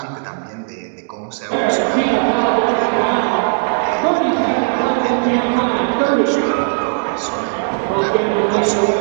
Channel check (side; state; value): left; silent; digital silence